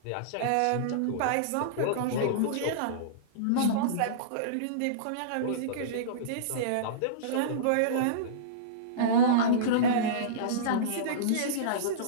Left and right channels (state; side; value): different; both; correlation -0.05